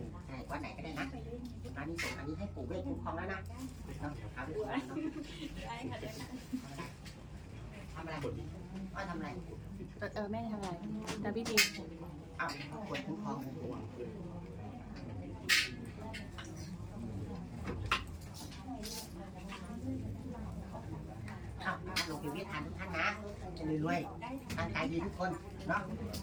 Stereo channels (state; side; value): identical; both; correlation 1.00